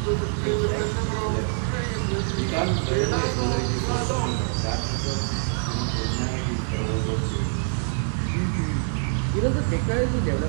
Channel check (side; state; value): left; silent; 62 dB below the other